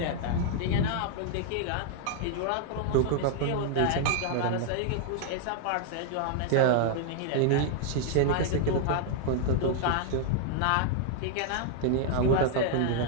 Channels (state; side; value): different; both; correlation 0.00